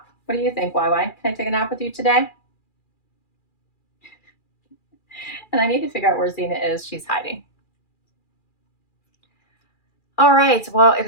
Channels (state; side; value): late; right; 2.4 ms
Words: What do you think, YY? Can I take a nap with you today? And I need to figure out where Zena is. She's hiding. All right. Well, it